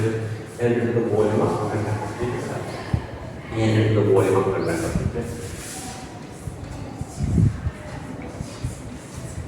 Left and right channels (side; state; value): both; identical; correlation 1.00